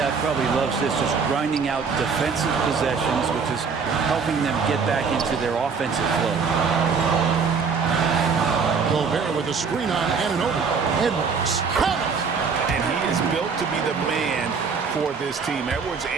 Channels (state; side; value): quieter; left; 5.5 dB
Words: probably loves this, just grinding out defensive possessions, which is helping them get back into their offensive flow. Gobert with a screen on Anunoby. Edwards. Count it. And he is built to be the man for this team. Edwards